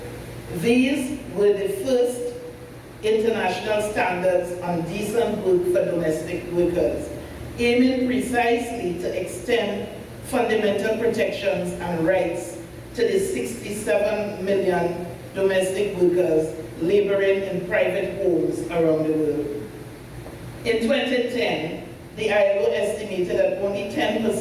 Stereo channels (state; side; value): identical; both; correlation 1.00